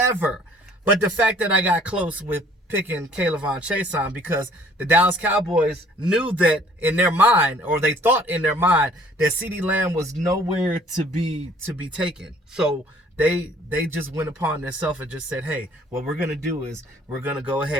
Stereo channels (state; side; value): normal; both; correlation 0.57